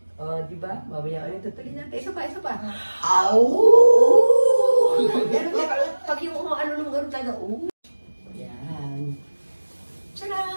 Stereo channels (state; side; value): inverted; both; correlation -1.00